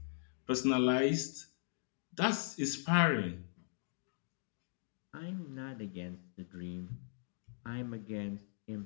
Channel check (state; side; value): silent; right; digital silence